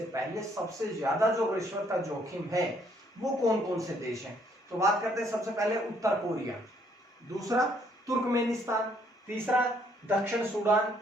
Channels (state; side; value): normal; both; correlation 0.67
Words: पहले सबसे ज्यादा जो रिश्वत का जोखिम है वो कौन कौन से देश हैं। तो बात करते हैं सबसे पहले उत्तर कोरिया, दूसरा तुर्कमेनिस्तान, तीसरा दक्षिण सूडान,